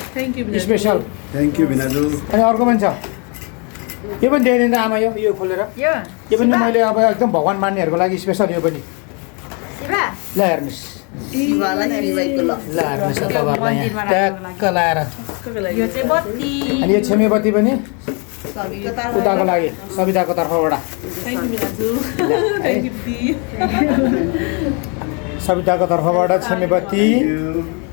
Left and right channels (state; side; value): quieter; right; 34.4 dB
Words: स्पेसल थ्याङ्क यू भिनाजु अनि अर्को पनि छ यो पनि ल्याइदिनु आमा यो खोलेर यो पनि मैले अब एकदम भगवान मान्नेहरूको लागि स्पेसल यो पनि ल हेर्नुहोस् ट्याक्क लाएर अनि यो छेमेबत्ती पनि उताको लागि सविताको तर्फबाट सविताको तर्फबाट छेमेबत्ती